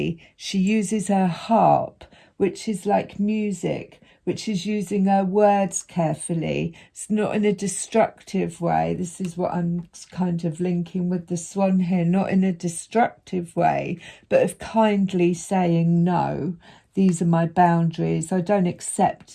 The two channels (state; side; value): identical; both; correlation 1.00